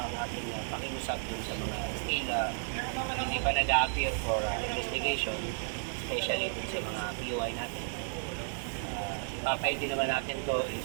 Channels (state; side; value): silent; left; digital silence